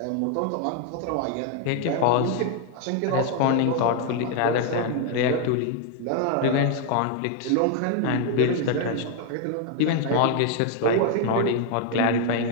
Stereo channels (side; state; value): both; different; correlation 0.00